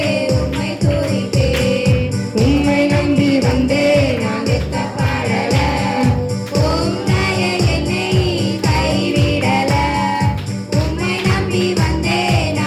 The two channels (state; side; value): identical; both; correlation 1.00